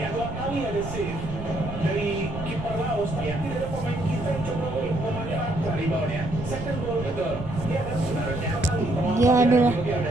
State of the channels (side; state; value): right; noise; rumble, 10 dB below the sound